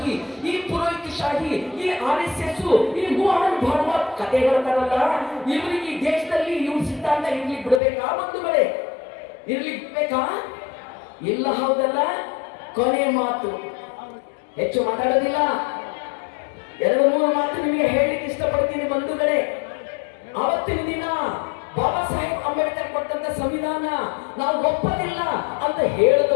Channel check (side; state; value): right; drops out; at 7.8 s